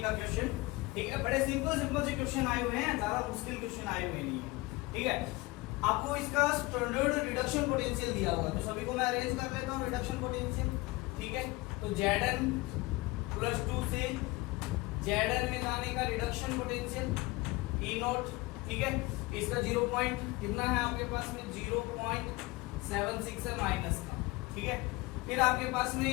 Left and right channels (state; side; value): quieter; right; 22.4 dB